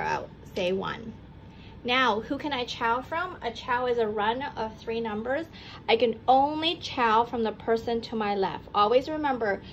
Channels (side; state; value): both; identical; correlation 1.00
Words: say, 1. Now, who can I chow from? A chow is a run of 3 numbers. I can only chow from the person to my left. Always remember,